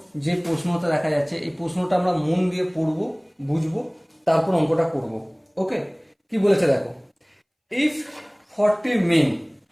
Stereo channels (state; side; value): identical; both; correlation 1.00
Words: যে প্রশ্নটা দেখা যাচ্ছে, এই প্রশ্নটা আমরা মন দিয়ে পড়বো, বুঝবো, তারপর অঙ্কটা করব। ওকে, কি বলেছে দেখো। ইফ 40 মেন